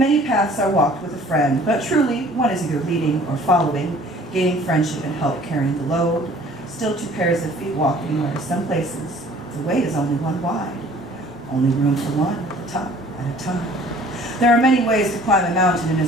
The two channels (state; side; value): normal; both; correlation 0.52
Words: paths are walked with a friend, but truly one is either leading or following, gaining friendship and help carrying the load. Still two pairs of feet walking where some places the way is only one wide. Only room for one at the top at a time. There are many ways to climb a mountain and